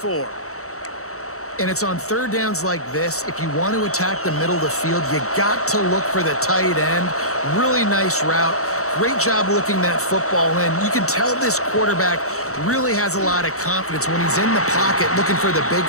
And it's on third downs like this. If you want to attack the middle of the field, you got to look for the tight end. Really nice route. Great job looking that football in. You can tell this quarterback really has a lot of confidence when he's in the pocket looking for the big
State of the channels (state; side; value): late; right; 0.64 ms